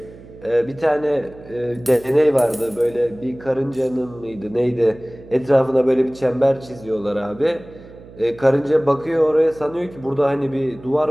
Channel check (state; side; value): noise; right; hum, 20 dB below the sound